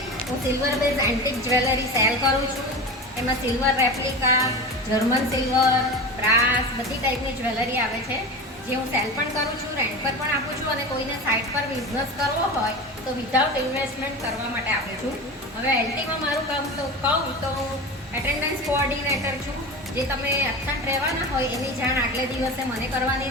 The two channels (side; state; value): both; normal; correlation 0.28